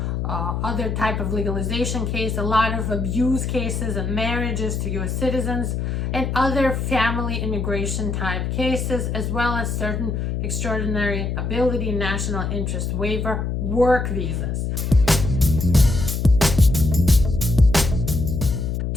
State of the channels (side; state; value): left; noise; hum, 1 dB below the sound